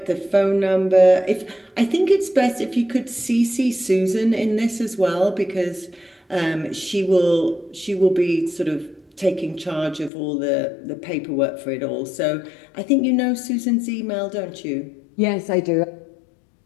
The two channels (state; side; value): drops out; right; at 10.1 s